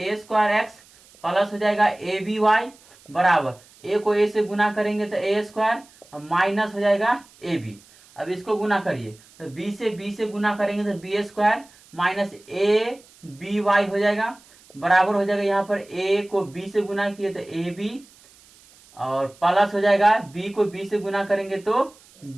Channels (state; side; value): noise; right; hiss, 27 dB below the sound